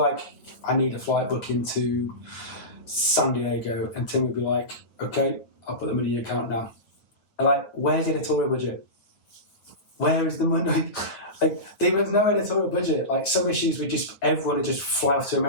I need a flight booking to San Diego, and Tim would be like, okay, I'll put the money in your account now. And like, where's the editorial budget? Where is the money? Like, there was no editorial budget. Like, some issues everyone would just fly off to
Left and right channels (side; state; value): right; late; 9.2 ms